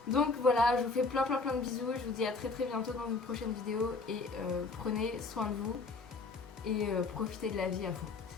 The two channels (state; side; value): quieter; right; 4.0 dB